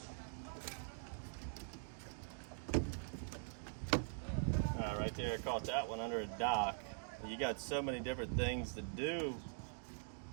Right there, I caught that one under a dock. You got so many different things to do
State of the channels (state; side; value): silent; left; digital silence